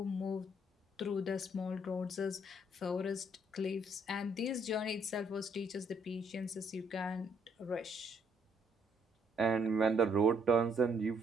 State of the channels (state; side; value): normal; both; correlation 0.68